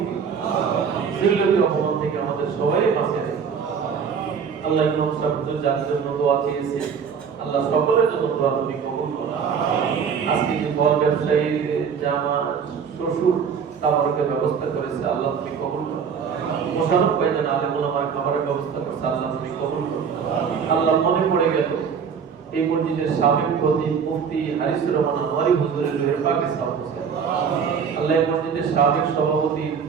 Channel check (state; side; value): quieter; left; 6.7 dB